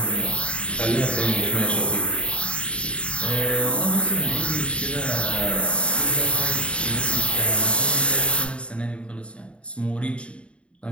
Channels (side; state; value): right; late; 0.058 ms